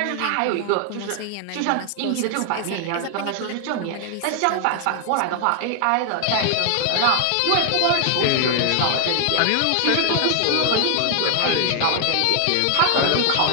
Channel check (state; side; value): different; both; correlation 0.00